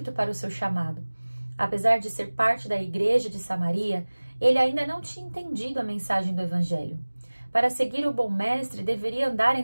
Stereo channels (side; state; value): both; inverted; correlation -1.00